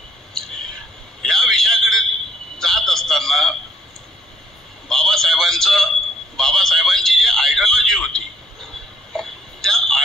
या विषयाकडे जात असताना बाबासाहेबांची जी आयडिओलॉजी होती त्या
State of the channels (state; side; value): normal; both; correlation 0.66